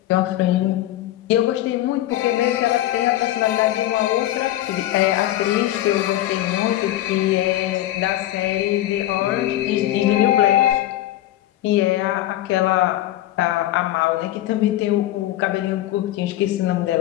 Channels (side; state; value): right; quieter; 14.4 dB